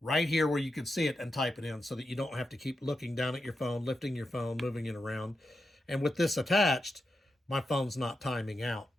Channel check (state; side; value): normal; both; correlation 0.88